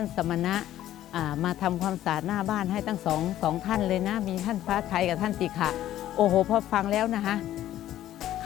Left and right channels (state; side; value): quieter; right; 12.9 dB